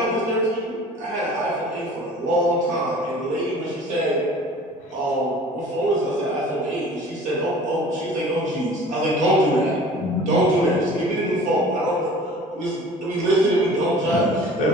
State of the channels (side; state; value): both; normal; correlation 0.45